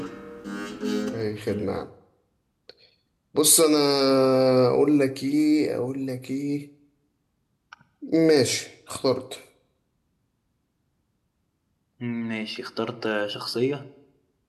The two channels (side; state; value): both; identical; correlation 1.00